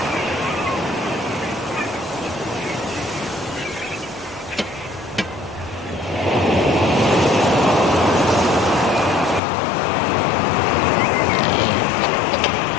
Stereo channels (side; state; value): right; drops out; at 9.4 s